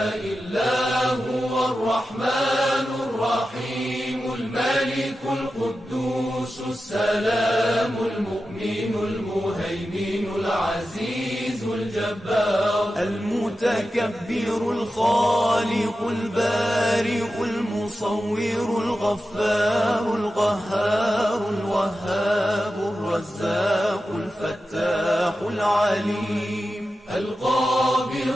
إلا هو الرحمن الرحيم الملك القدوس السلام المؤمن المهيمن العزيز الجبار المتكبر الخالق البارئ المصور الغفار القهار الوهاب الرزاق الفتاح العليم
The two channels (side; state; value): both; normal; correlation 0.92